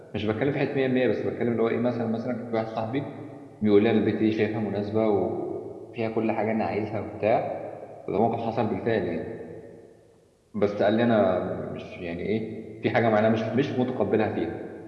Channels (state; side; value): identical; both; correlation 1.00